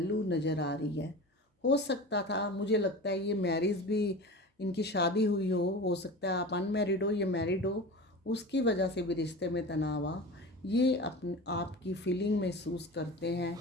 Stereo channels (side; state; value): both; normal; correlation 0.32